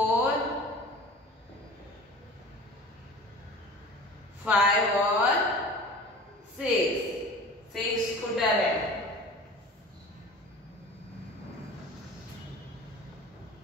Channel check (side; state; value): both; normal; correlation 0.39